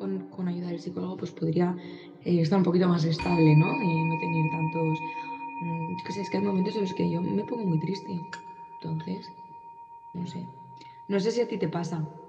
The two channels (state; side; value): identical; both; correlation 1.00